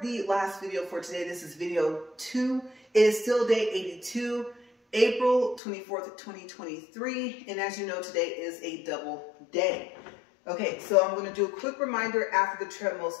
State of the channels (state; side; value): drops out; right; at 5.6 s